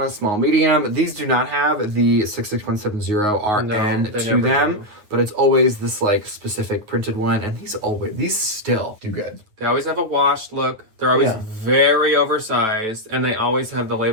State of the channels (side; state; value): left; late; 9.5 ms